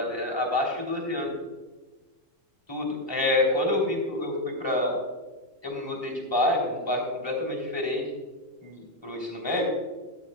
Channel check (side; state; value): both; normal; correlation 0.03